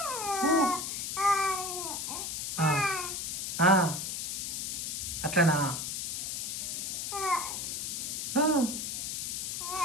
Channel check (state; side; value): noise; left; hiss, 3 dB below the sound